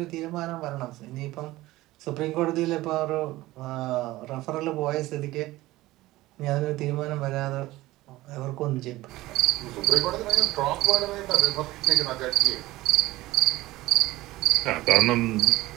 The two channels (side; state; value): left; quieter; 17.8 dB